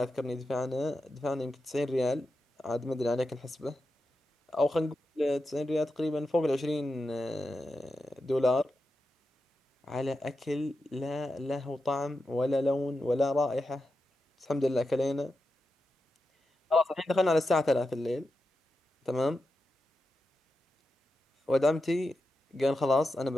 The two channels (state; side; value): normal; both; correlation 0.89